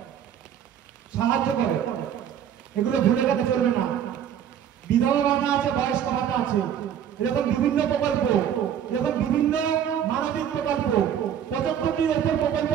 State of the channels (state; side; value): quieter; left; 9.3 dB